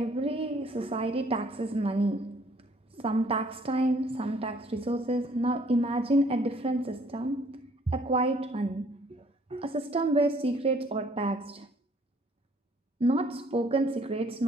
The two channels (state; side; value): normal; both; correlation 0.61